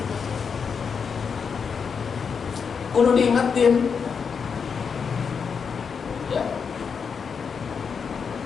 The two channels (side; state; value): right; quieter; 6.2 dB